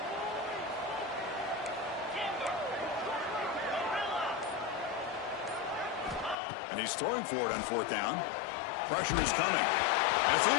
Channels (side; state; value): right; drops out; at 6.4 s